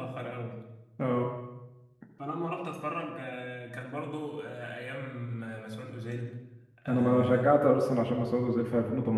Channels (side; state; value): both; identical; correlation 1.00